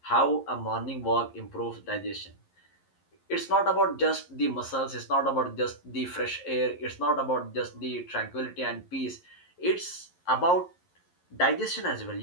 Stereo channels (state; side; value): late; right; 11 ms